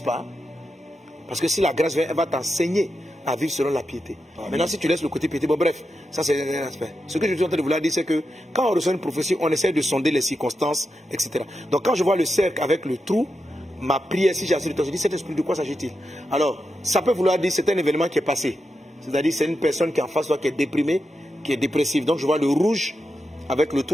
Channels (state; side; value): normal; both; correlation 0.88